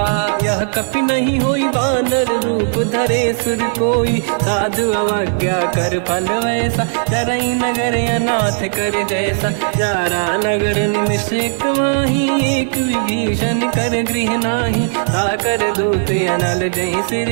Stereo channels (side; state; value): left; silent; digital silence